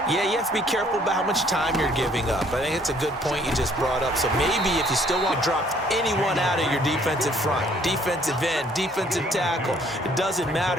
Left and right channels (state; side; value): normal; both; correlation 0.61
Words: Yeah, you have to be careful about how much time you're giving up. I think it's a good point you just brought up. So maybe if you still want to drop anyone out of your defensive front, defensive end, defensive tackle, it doesn't